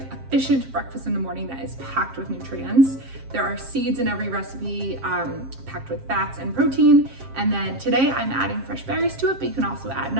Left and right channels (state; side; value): late; left; 7.5 ms